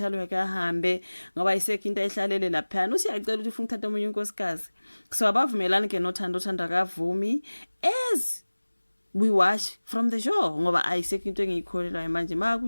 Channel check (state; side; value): inverted; both; correlation -1.00